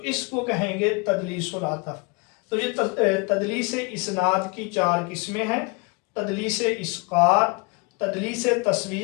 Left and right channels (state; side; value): quieter; right; 30.1 dB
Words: اس کو کہیں گے تدلیس العطف۔ تو یہ تدلیس اسناد کی چار قسمیں ہیں، تدلیس اسقاط، تدلیس